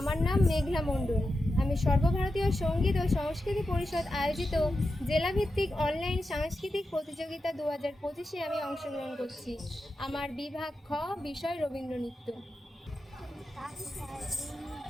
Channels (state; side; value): normal; both; correlation 0.89